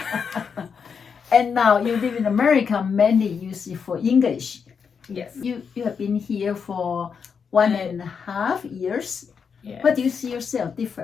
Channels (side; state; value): right; quieter; 6.3 dB